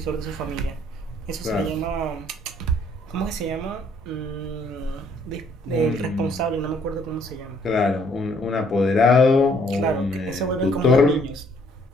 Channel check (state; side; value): normal; both; correlation 0.64